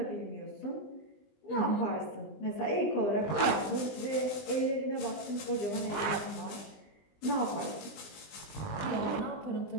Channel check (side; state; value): right; late; 20 ms